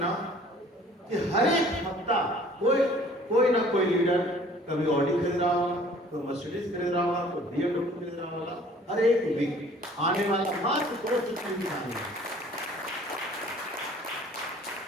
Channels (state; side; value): normal; both; correlation 0.52